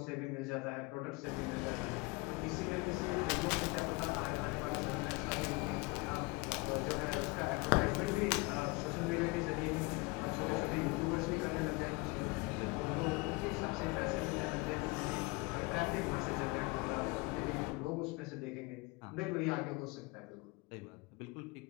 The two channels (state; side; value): quieter; right; 25.9 dB